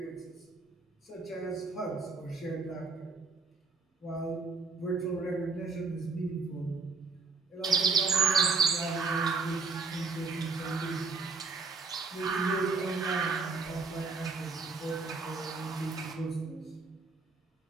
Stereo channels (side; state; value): left; quieter; 4.4 dB